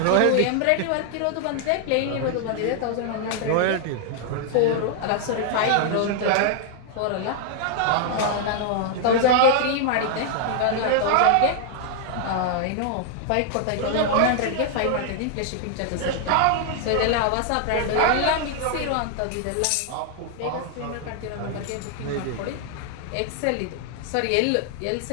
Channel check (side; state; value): both; different; correlation 0.00